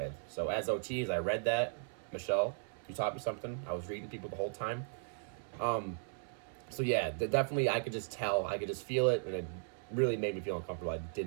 So as OTs, I read that. Michelle, you taught me something. I was reading people the whole time. So yeah, definitely I could just tell. I could just feel it, and it really made me feel uncomfortable. I did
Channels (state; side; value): silent; left; 53 dB below the other